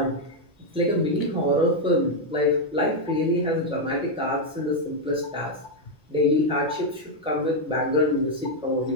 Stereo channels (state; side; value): normal; both; correlation 0.02